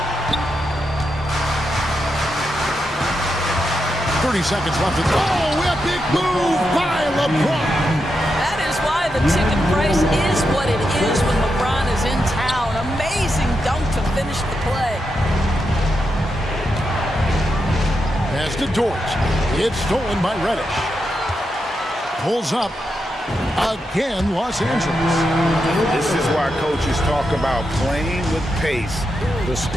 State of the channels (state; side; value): normal; both; correlation 0.85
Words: 30 seconds left. Oh, epic move by LeBron. That is why the ticket price is what it is when LeBron is in town. Amazing dunk to finish the play. Pass to Dort. It's stolen by Reddish. Pulls up. Again, Los Angeles. This is why coaches talk about playing with pace. The